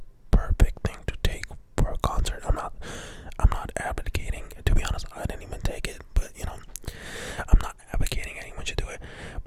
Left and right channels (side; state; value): both; identical; correlation 1.00